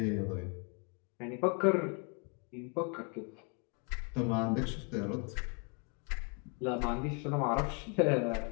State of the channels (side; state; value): right; quieter; 36.1 dB